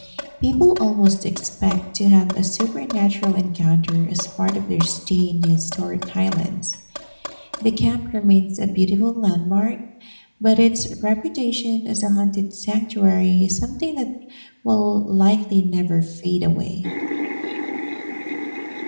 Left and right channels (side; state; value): both; inverted; correlation -1.00